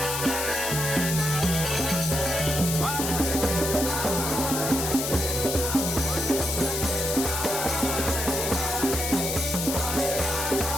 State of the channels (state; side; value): noise; left; hiss, 2 dB below the sound